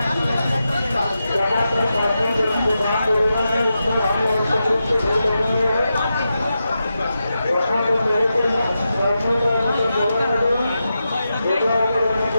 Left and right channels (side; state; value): both; inverted; correlation -0.89